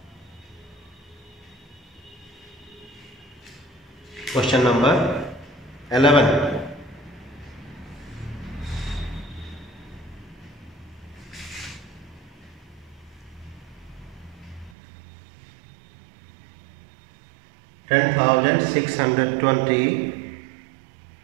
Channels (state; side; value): drops out; left; at 14.8 s